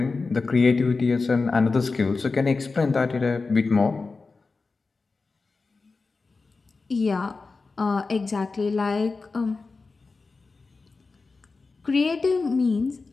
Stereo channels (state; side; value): quieter; right; 4.0 dB